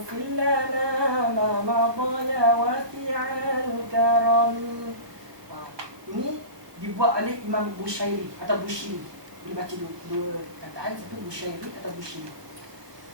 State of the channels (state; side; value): late; left; 1.2 ms